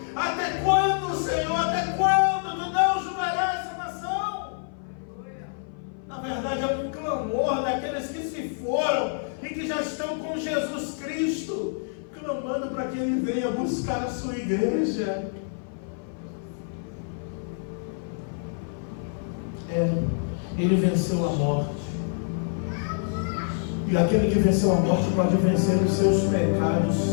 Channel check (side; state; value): right; silent; 57 dB below the other